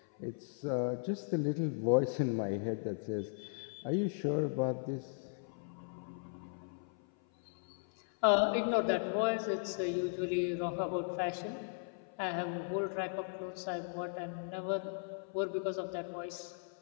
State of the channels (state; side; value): silent; right; 53 dB below the other